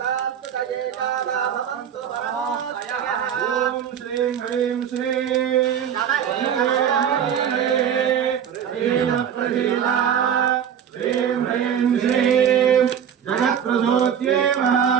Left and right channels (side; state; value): left; quieter; 8.6 dB